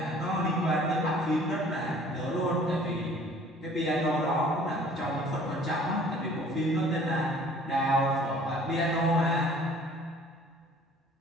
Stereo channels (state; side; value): normal; both; correlation 0.52